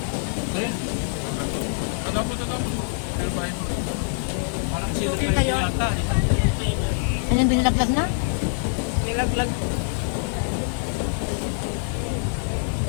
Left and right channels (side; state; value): right; silent; 62 dB below the other